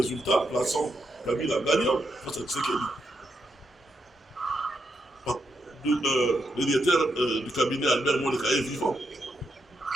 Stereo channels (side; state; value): both; normal; correlation 0.81